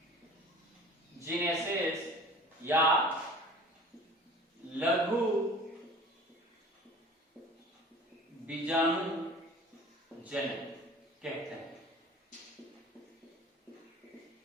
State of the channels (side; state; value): both; normal; correlation 0.43